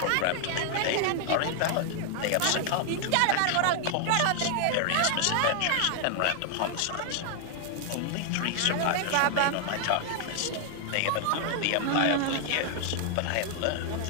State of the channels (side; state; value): both; different; correlation 0.00